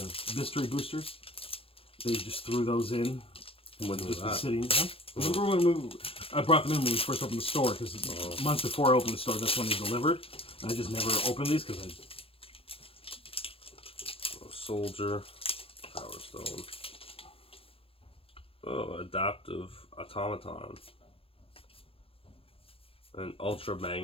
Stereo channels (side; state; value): right; late; 0.27 ms